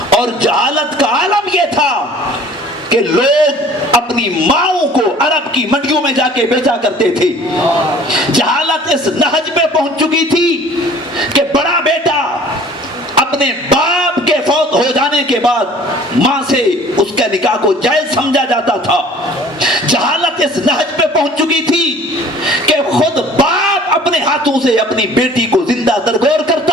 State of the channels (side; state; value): both; normal; correlation 0.50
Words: اور جہالت کا عالم یہ تھا کہ لوگ اپنی ماؤں کو عرب کی منڈیوں میں جا کے بیچا کرتے تھے۔ جہالت اس نہج پہ پہنچ چکی تھی کہ بڑا بیٹا اپنے باپ کے فوت ہو جانے کے بعد ماں سے اس کے نکاح کو جائز سمجھا جاتا تھا۔ جہالت اس نہج پہ پہنچ چکی تھی کہ خود باپ اپنے ہاتھوں سے اپنی بیٹی کو زندہ درگور